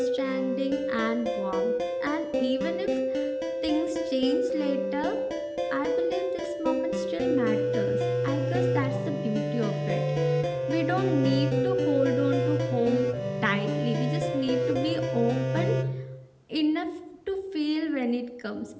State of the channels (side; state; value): both; identical; correlation 1.00